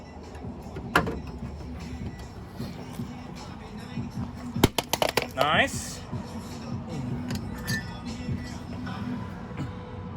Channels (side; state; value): both; identical; correlation 1.00